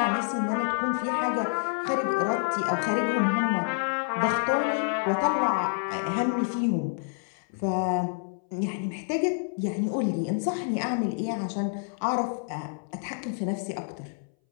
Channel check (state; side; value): silent; right; 59 dB below the other